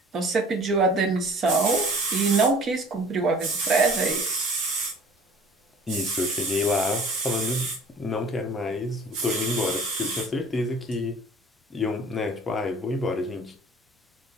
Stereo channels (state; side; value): normal; both; correlation 0.48